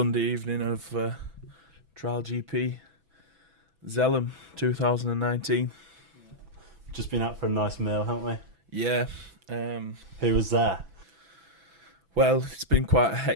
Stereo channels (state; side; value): late; left; 6.0 ms